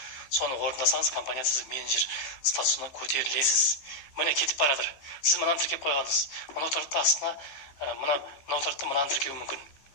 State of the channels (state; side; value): late; right; 15 ms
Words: Соны орындасаңыз, компания сіз менеджер статусына көтерілесіз. Міне кетіп барадыр. Сіз мынаны тіркеп қойғансыз. Мынау тұрады астына мынау тұрады мынаны тіркеуі мүмкін.